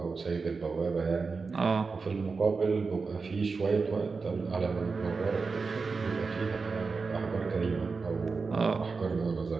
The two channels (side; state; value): left; quieter; 4.6 dB